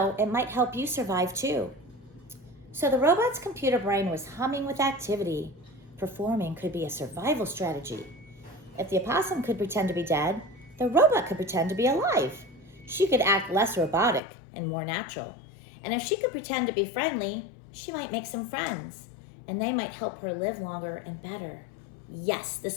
it might help you survive too. So the robot's computer brain was humming with activity. Performing could be a survival strategy. If the opossum could pretend to be dead, the robot could pretend to be alive. She could act less robotic and more natural. And if she could pretend to be friendly, she might make some friends, and they might help her live longer and better. Yes,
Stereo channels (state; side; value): drops out; right; at 14.2 s